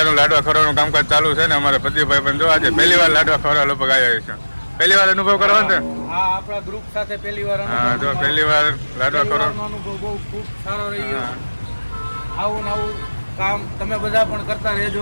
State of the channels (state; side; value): inverted; both; correlation -1.00